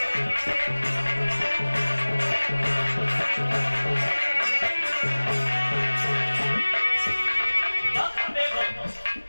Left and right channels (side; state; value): both; inverted; correlation -1.00